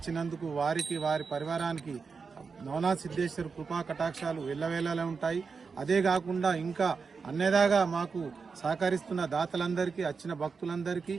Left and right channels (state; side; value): quieter; left; 5.1 dB